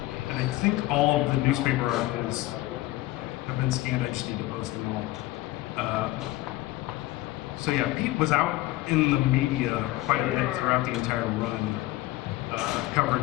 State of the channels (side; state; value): right; quieter; 17.7 dB